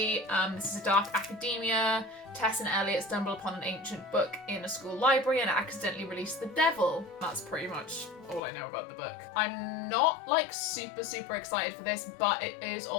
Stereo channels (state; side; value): drops out; right; at 8.4 s